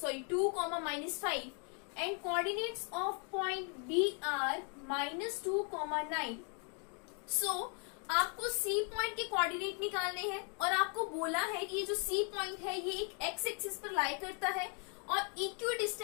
-5 and coordinates of point B are -2, 9। So आपको सी पॉइंट के कोऑर्डिनेट निकालने हैं और आपको बोला है कि ये जो सी पॉइंट है ये एक एक्स एक्सिस पर लाई करता है और इक्वी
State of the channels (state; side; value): quieter; right; 38.7 dB